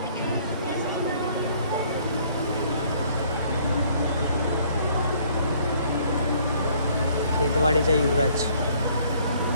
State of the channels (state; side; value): inverted; both; correlation -0.61